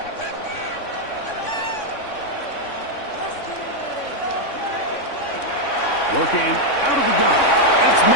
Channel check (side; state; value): right; late; 3.6 ms